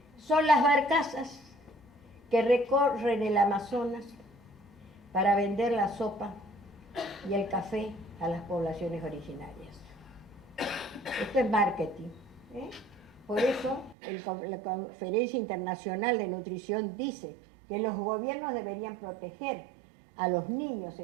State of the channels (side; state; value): left; drops out; at 14.0 s